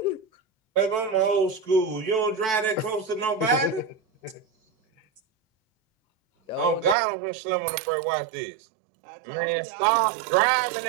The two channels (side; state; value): left; drops out; at 7.0 s